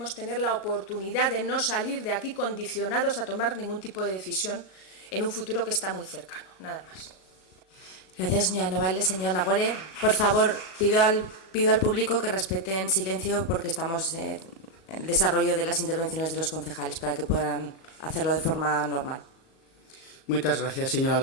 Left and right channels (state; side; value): late; right; 37 ms